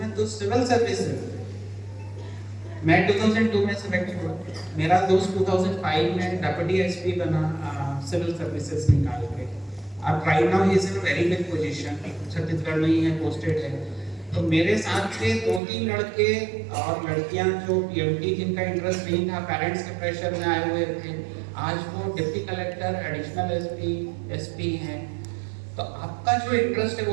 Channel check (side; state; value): left; drops out; at 15.6 s